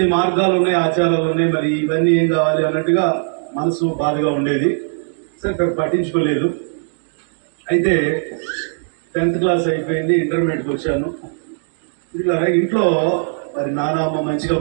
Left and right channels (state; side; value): silent; left; digital silence